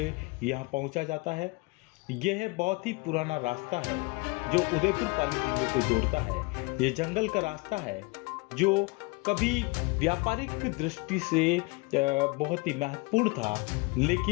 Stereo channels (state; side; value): quieter; right; 26.7 dB